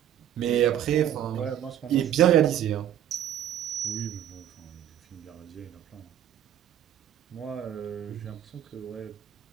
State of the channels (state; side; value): quieter; left; 10.8 dB